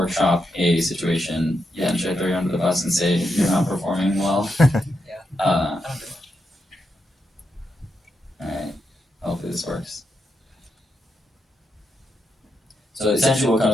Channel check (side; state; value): both; normal; correlation 0.84